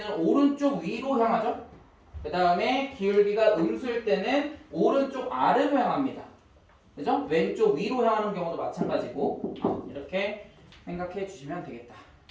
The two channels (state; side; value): identical; both; correlation 1.00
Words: 오른쪽 위로 향하죠. 그 다음에 기울기가 음수일 때는 오른쪽 아래로 향합니다. 그죠? 왼쪽 위로 향하는 경우도 마찬가지고 이렇게 생각해 주시면 되겠다